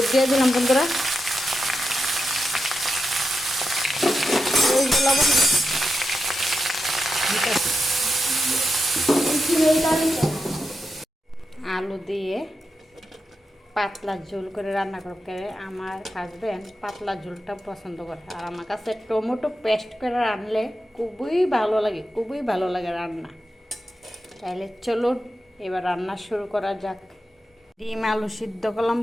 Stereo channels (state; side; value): normal; both; correlation 0.88